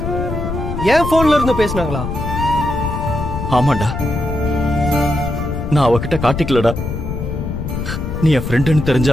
என் போன்ல இருந்து பேசினாங்களா? ஆமாண்டா, நான் அவகிட்ட காட்டிக்கலடா. நீ என் ஃப்ரெண்டுன்னு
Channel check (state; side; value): noise; left; rumble, 5 dB below the sound